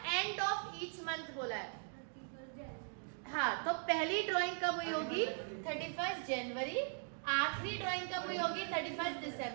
end of each month बोला है। हाँ, तो पहली ड्राइंग कब हुई होगी? 31 जनवरी। आखिरी ड्राइंग कब हुई होगी? 31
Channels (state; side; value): silent; left; 51 dB below the other